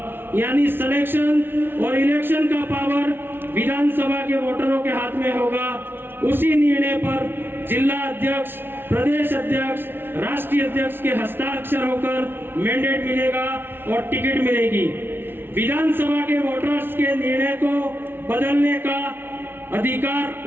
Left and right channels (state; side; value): late; left; 0.11 ms